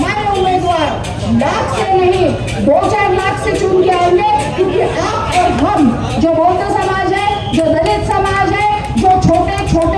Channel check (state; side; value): identical; both; correlation 1.00